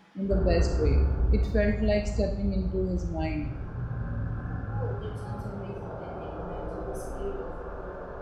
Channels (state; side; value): identical; both; correlation 1.00